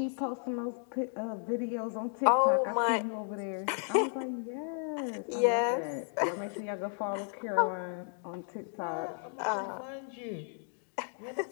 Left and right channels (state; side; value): silent; right; 55 dB below the other